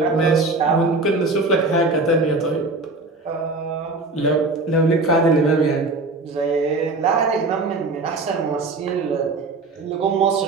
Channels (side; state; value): left; quieter; 3.4 dB